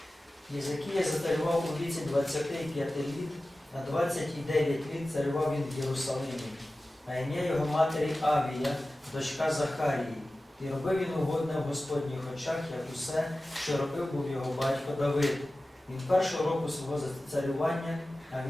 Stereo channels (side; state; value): both; normal; correlation 0.96